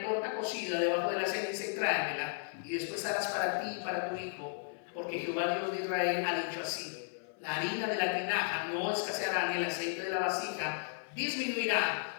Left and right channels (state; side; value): silent; right; 55 dB below the other